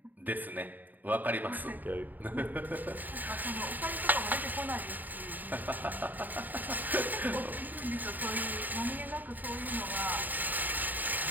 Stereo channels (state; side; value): late; left; 0.087 ms